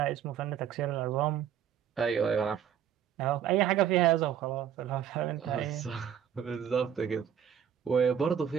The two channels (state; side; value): quieter; left; 9.0 dB